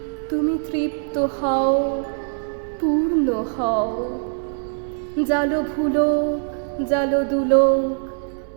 তুমি তৃপ্ত হও, পূর্ণ হও, জালো ভুলোক জালো দুলোক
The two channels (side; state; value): left; silent; digital silence